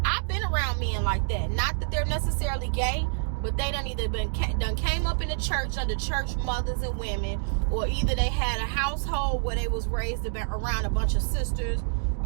I've been around men like that. Not that they're necessarily gay, but they done either came up in the church under church mothers and women, or either they had a household where they was raised around a bunch of sisters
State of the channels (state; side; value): silent; left; digital silence